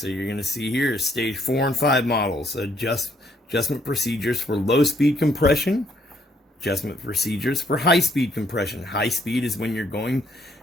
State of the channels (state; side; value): normal; both; correlation 0.68